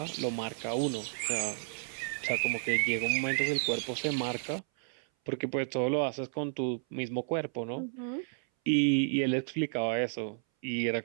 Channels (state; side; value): silent; left; 56 dB below the other